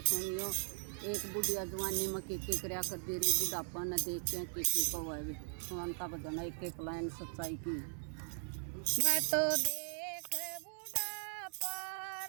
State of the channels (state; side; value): silent; left; digital silence